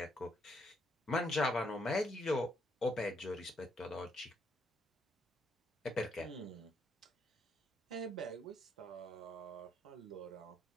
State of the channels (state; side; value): normal; both; correlation 0.74